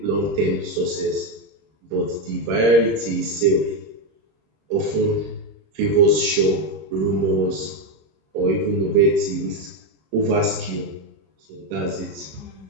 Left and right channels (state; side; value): late; left; 26 ms